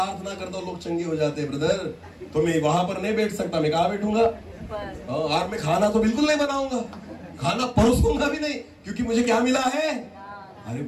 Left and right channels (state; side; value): identical; both; correlation 1.00